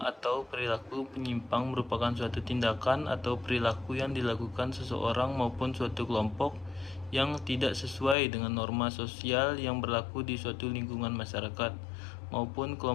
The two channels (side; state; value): right; drops out; at 8.2 s